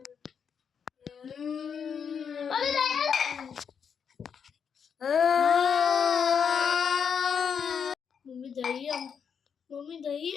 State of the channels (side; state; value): right; quieter; 7.0 dB